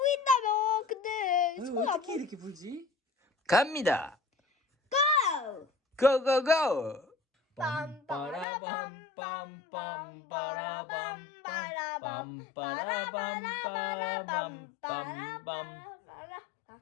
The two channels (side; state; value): right; drops out; at 8.5 s